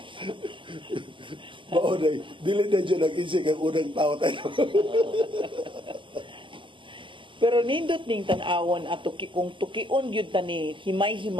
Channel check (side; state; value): left; late; 0.25 ms